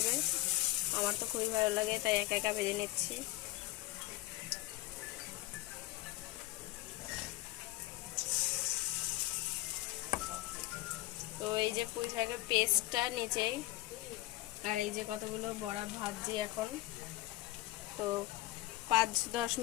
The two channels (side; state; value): right; quieter; 17.9 dB